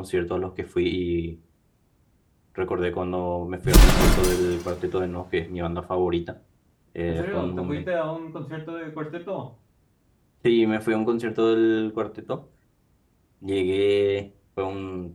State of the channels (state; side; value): identical; both; correlation 1.00